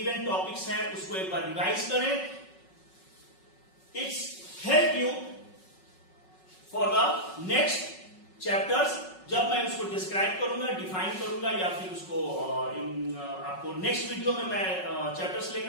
टॉपिक्स हैं उसको एक बार रिवाइज करें। It's help you for the next chapters. जब मैं उसको डिस्क्राइब करूंगा, डिफाइन करूंगा या फिर उसको आपको नेक्स्ट वीडियो में मैं चैप्टर्स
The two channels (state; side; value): late; right; 5.4 ms